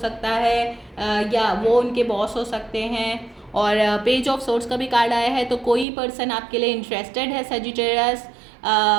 है, या वो उनके बॉस हो सकते हैं। और पेज ऑफ सोर्स का भी कार्ड आया है, तो कोई पर्सन आपके लिए इंटरेस्टेड है सेजिटेरियस,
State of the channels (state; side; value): drops out; left; at 5.9 s